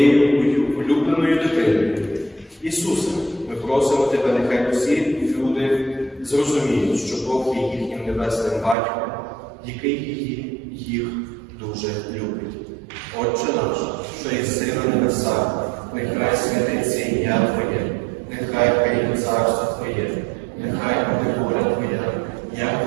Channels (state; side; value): drops out; left; at 8.8 s